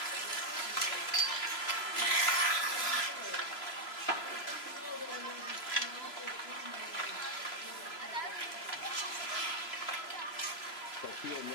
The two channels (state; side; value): late; right; 3.0 ms